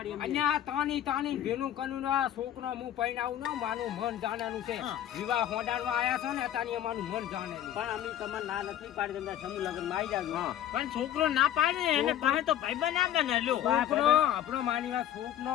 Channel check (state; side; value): quieter; right; 11.4 dB